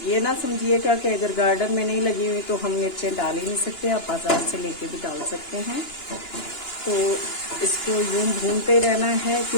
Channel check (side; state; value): right; late; 2.9 ms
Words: ना समझिएगा कि अगर गार्डन में नहीं लगी हुई तो हम मिर्चें डाल ही नहीं सकते, आप बाजार से लेके भी डाल सकते हैं। तो इसको यूं भूनते रहना है,